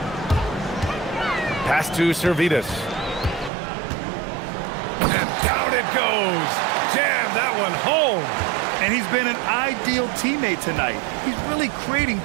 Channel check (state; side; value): drops out; left; at 3.5 s